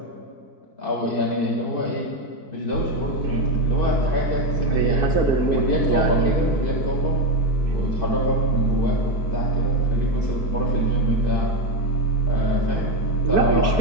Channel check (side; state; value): right; late; 4.6 ms